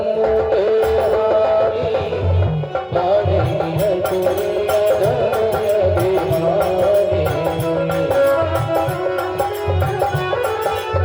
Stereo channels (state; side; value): identical; both; correlation 1.00